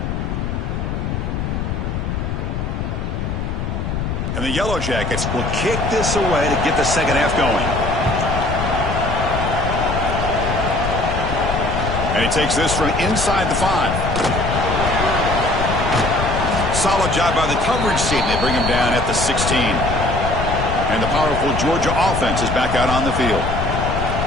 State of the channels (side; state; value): left; noise; rumble, 3 dB below the sound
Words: And the Yellow Jackets will kick this away to get the second half going. And he takes this from inside the 5. Solid job by the coverage team. They bring him down at the 16. And the powerful Georgia offense is back out on the field.